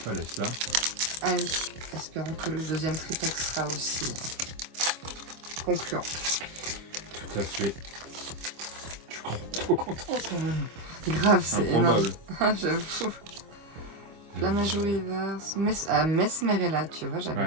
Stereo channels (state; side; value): late; left; 25 ms